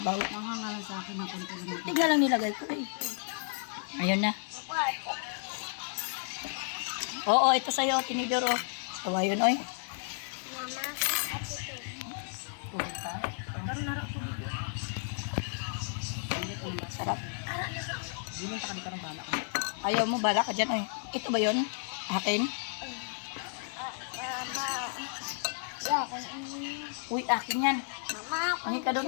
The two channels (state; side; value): silent; right; 56 dB below the other